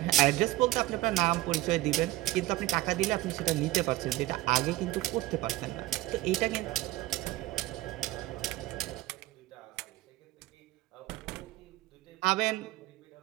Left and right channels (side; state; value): left; quieter; 16.6 dB